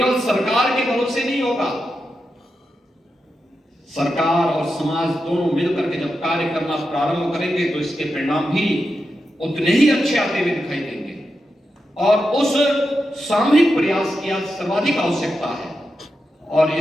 सरकार के भरोसे नहीं होगा, सरकार और समाज दोनों मिलकर के जब कार्य करना प्रारंभ करेंगे तो इसके परिणाम भी उतने ही अच्छे आते हुए दिखाई देंगे। और उस सामूहिक प्रयास की आज सर्वाधिक आवश्यकता है और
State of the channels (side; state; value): both; normal; correlation 0.88